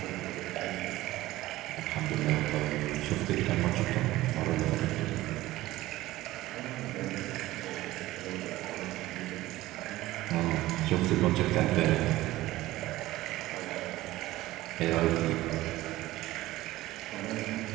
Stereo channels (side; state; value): left; quieter; 16.9 dB